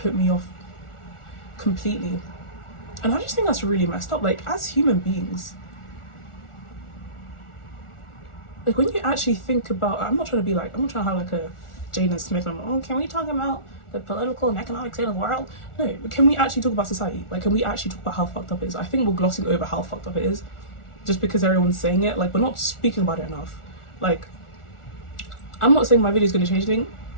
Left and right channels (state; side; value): late; right; 1.4 ms